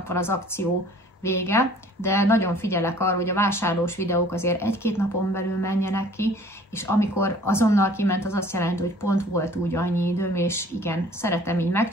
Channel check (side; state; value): both; normal; correlation 0.52